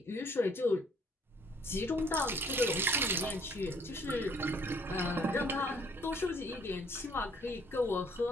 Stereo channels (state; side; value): normal; both; correlation 0.61